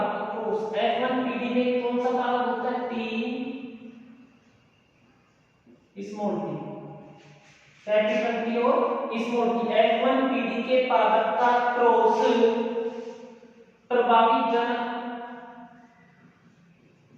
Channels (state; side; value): identical; both; correlation 1.00